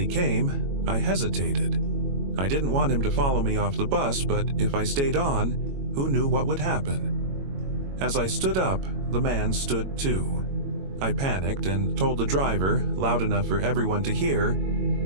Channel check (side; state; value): left; late; 22 ms